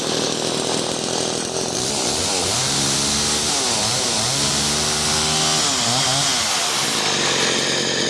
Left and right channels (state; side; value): identical; both; correlation 1.00